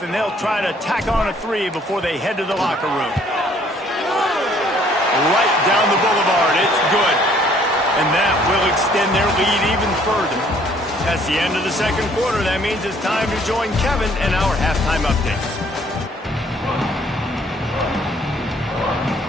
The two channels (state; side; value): normal; both; correlation 0.61